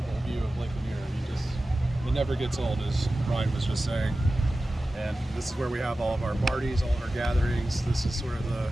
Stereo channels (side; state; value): both; normal; correlation 0.95